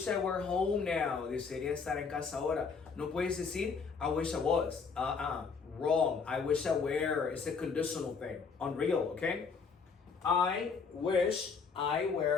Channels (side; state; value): right; quieter; 5.3 dB